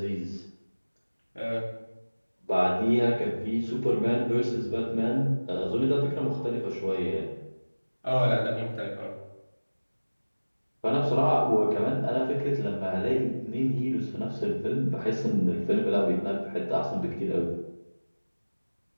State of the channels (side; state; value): both; inverted; correlation -1.00